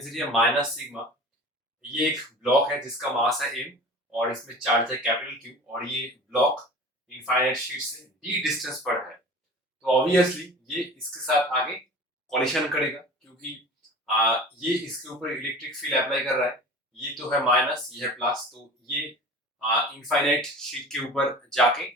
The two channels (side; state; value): both; normal; correlation 0.38